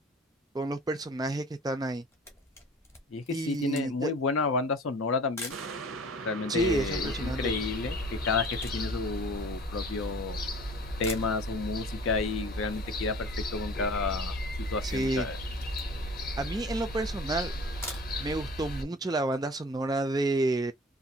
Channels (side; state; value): both; normal; correlation 0.45